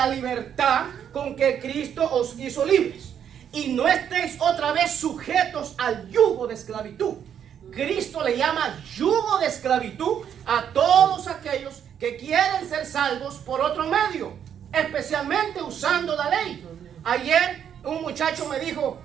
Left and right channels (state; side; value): quieter; left; 8.8 dB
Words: libertad con que Cristo os hizo libres. Y no estéis otra vez sujetos al yugo de esclavitud. Cristo le llama yugo de esclavitud a todos aquellos que quieren ser salvos por otro medio, especialmente usando la ley. Ayer un muchacho me dijo